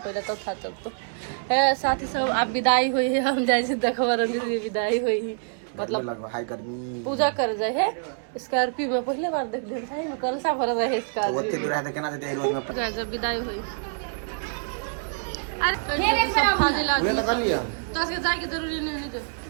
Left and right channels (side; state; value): left; silent; digital silence